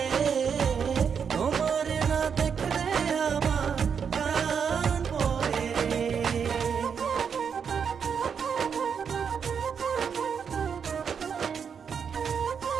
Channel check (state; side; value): quieter; left; 6.8 dB